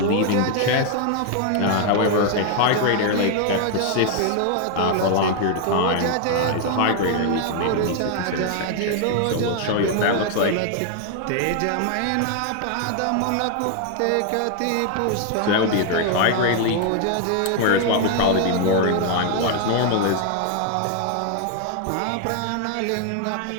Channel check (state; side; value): different; both; correlation 0.00